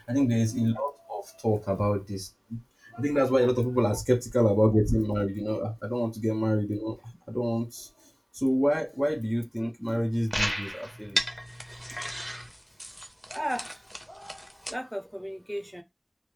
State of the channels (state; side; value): identical; both; correlation 1.00